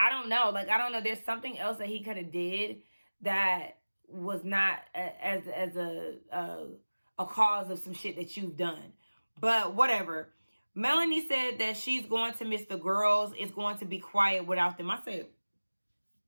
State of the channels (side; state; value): both; inverted; correlation -1.00